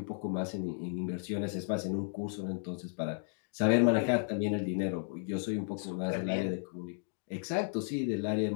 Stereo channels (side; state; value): right; silent; digital silence